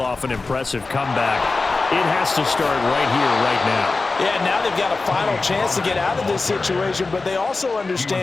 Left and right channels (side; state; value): right; quieter; 3.7 dB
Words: off an impressive comeback, it has to start right here, right now. Yeah, now they've got a final chance to get out of this situation, but they also